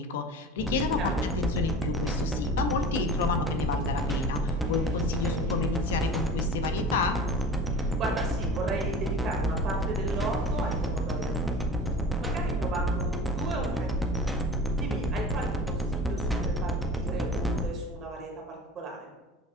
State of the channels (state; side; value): normal; both; correlation 0.37